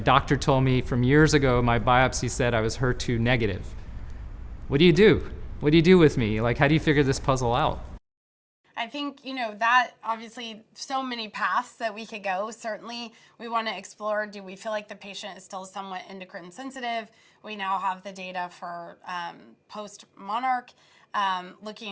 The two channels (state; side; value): identical; both; correlation 1.00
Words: told me from years ago, my biopsy said I was HER2 negative. What do you do? What do you do with me? Like, how do you figure this puzzle out? I think, that obviously so many paths that we could go. Certainly, we want to explore, do we feel like the patient is still somewhat endocrine sensitive? We now have the data for post-Monarch,